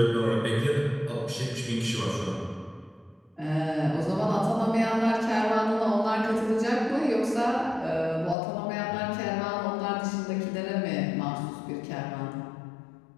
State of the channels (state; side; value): drops out; right; at 8.3 s